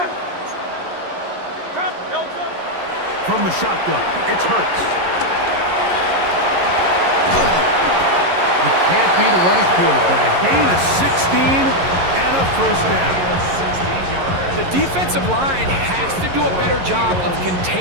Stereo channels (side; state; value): left; late; 11 ms